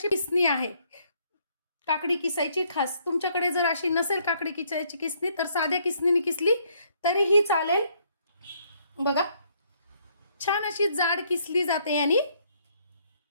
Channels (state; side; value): inverted; both; correlation -0.68